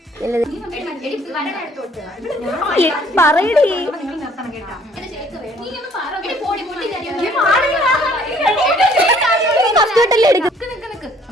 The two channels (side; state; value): both; normal; correlation 0.59